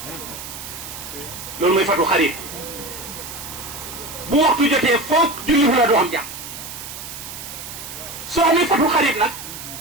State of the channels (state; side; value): noise; right; hiss, 10 dB below the sound